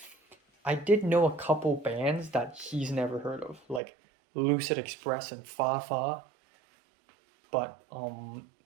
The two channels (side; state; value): left; drops out; at 3.8 s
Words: I did know a couple bands that he's never heard of, like Lucid Express and Fa Fa. But